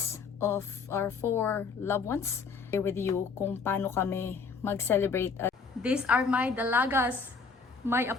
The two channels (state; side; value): quieter; right; 5.0 dB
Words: of our 4 loved ones. Here with you kung paano kami mag-celebrate. These are my dalagas, my